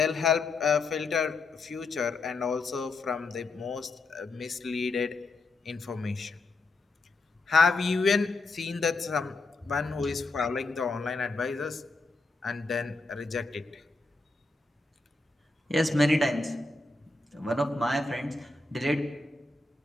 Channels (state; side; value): quieter; right; 3.4 dB